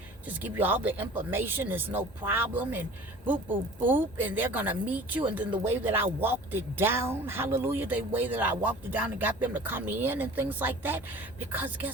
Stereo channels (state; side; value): normal; both; correlation 0.44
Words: just give you all the information. There's no problem, and boop, boop, boop, and they're going to meet you. And then the way that I walked it down, hallelujah, the way that I walked it down and got them to come in and things like that. Because